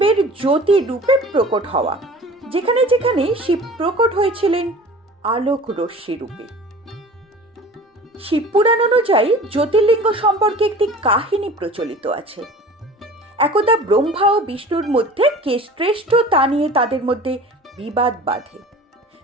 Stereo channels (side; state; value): both; normal; correlation 0.42